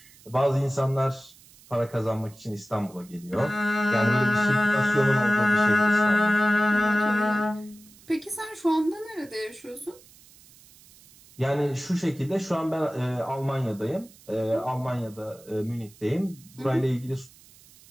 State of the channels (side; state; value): right; noise; hiss, 25 dB below the sound